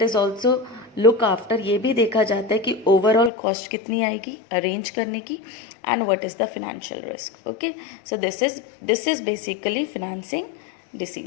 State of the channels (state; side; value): drops out; right; at 3.3 s